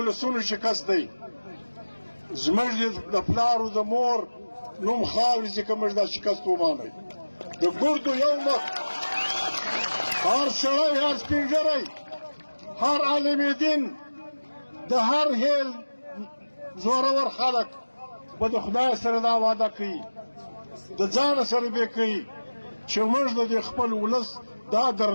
شکست دی زموږ د پلارو د مور نوم خاورې چې که موږ دا شکست ومانئ د ګردو یو مخ هر سړی هر سپین ږیری هر عالم دین د هر هیل زورور خلک به د خدای سره دا وعده کوي د ځانه سره به کوي چې موږ د خپل ولس دا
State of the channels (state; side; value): inverted; both; correlation -1.00